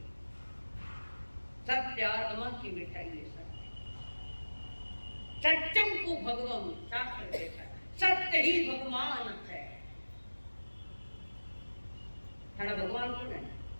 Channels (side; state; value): both; inverted; correlation -1.00